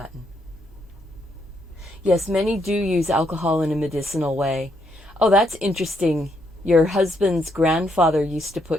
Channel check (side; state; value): both; normal; correlation 0.75